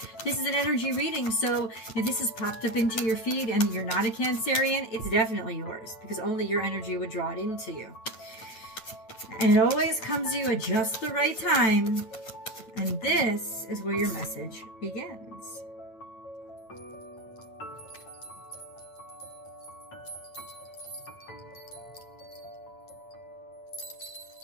this is an energy reading, so if this has popped up into your feed and you're not a Cancerian, it's definitely yours, because only your energy would draw it into you. And it always comes to you at just the right time. And this is where your message begins.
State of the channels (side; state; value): right; late; 8.9 ms